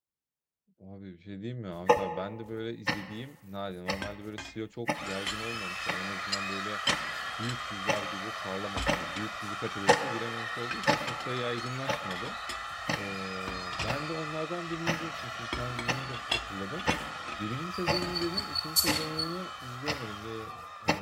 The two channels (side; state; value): both; identical; correlation 1.00